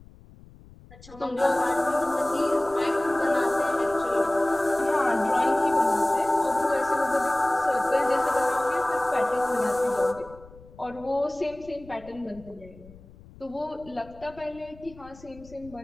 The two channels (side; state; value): left; noise; rumble, 22 dB below the sound